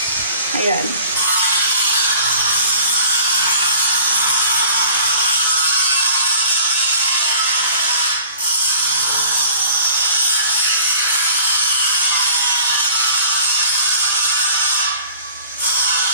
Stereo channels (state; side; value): inverted; both; correlation -0.48